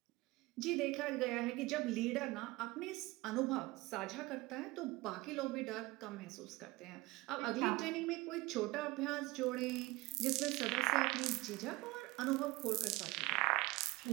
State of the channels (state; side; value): quieter; left; 21.0 dB